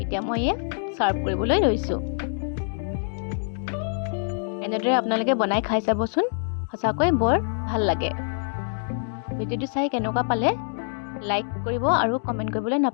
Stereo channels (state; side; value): silent; right; digital silence